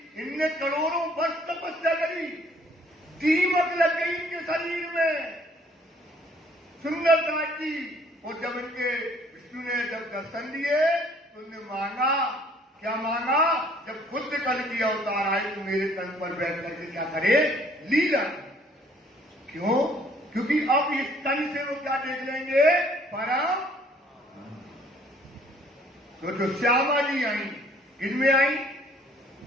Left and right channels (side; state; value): both; normal; correlation 0.60